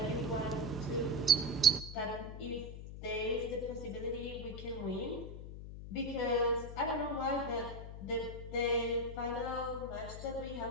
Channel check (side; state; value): left; noise; hum, 10 dB below the sound